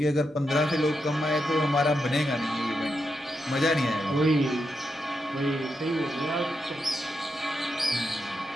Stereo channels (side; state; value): both; normal; correlation 0.85